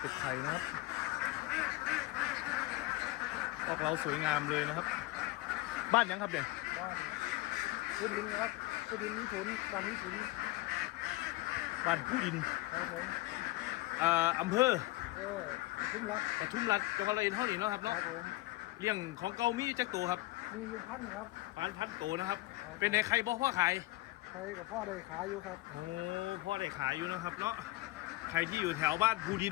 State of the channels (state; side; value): quieter; right; 19.7 dB